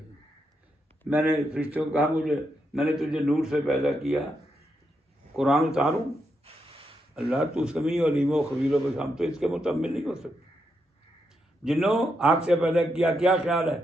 میں نے فرشتوں کو کہا میں نے تجھے نور سے پیدا کیا، قرآن اتاروں؟ اللہ تو سمیع و علیم و خبیر و بصیر، ہم تو اس کے متمل نہیں ہو سکتے. جنوں آنکھ سے پیدا کیا، کیا خیال ہے؟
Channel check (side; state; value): both; normal; correlation 0.82